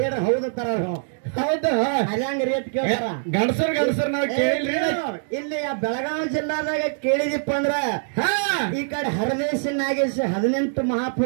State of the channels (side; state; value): left; silent; digital silence